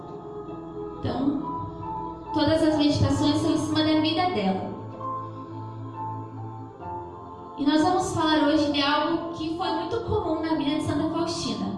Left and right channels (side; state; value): both; identical; correlation 1.00